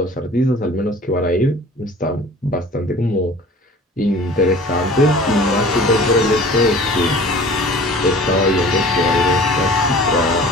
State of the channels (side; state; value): both; normal; correlation 0.44